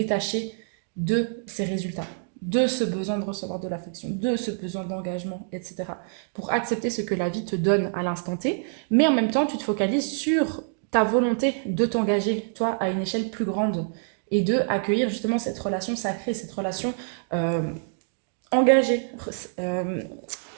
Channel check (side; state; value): left; silent; digital silence